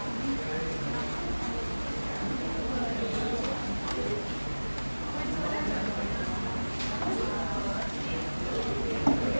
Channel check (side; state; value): both; inverted; correlation -1.00